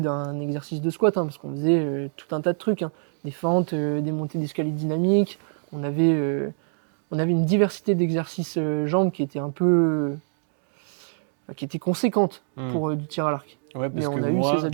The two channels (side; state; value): left; silent; digital silence